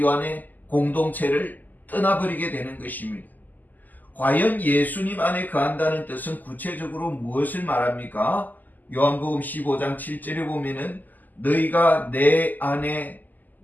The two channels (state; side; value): late; right; 0.084 ms